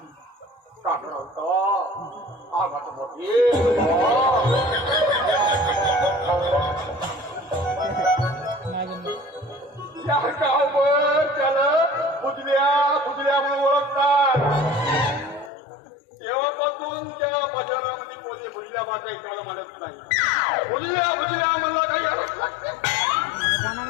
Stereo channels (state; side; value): drops out; right; at 15.5 s